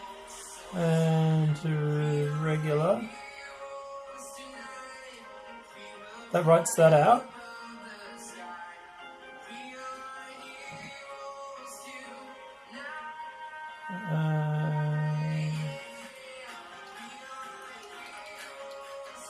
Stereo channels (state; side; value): identical; both; correlation 1.00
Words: and to regular. That writes that out.